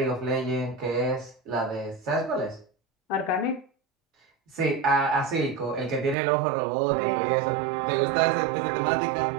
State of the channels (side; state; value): left; drops out; at 6.2 s